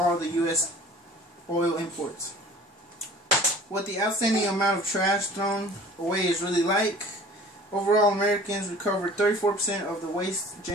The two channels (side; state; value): both; normal; correlation 0.46